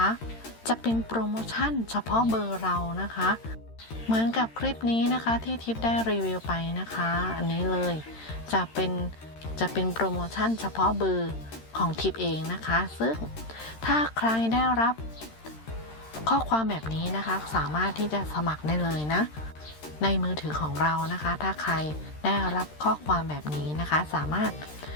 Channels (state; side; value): late; right; 13 ms